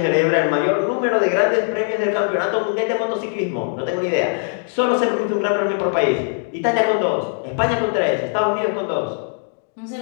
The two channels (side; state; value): right; silent; 57 dB below the other